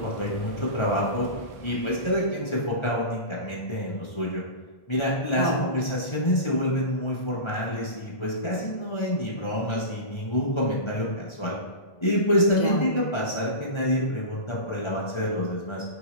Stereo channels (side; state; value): right; late; 1.3 ms